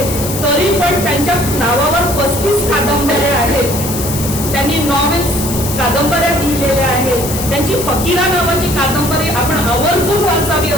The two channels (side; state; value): left; noise; hiss, 7 dB below the sound